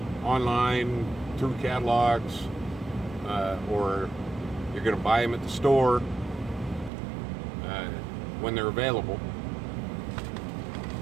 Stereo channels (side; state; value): left; drops out; at 6.9 s